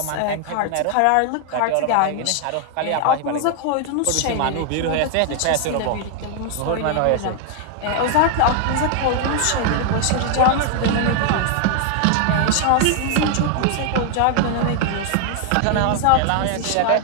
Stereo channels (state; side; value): different; both; correlation 0.00